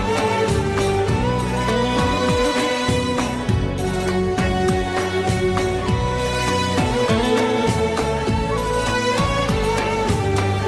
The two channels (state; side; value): identical; both; correlation 1.00